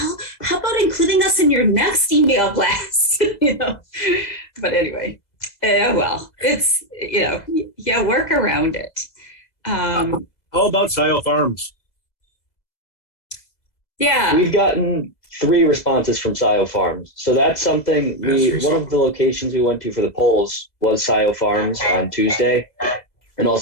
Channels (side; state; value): right; late; 2.0 ms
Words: how about including us in your next email blast? But anyway, it's, work around it. How about Scio Farms? Yeah. We've gotten 3 responses from Scio Farms. So that's something one of the locations we went to for the polls was Scio Farms on Tuesday. And